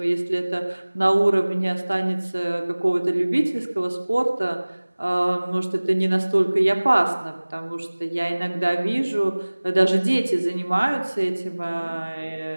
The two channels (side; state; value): both; inverted; correlation -1.00